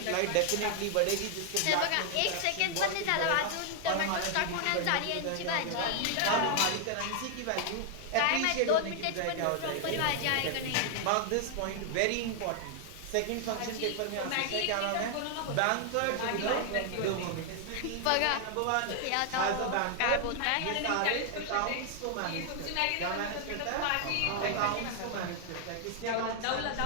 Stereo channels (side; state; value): both; different; correlation 0.00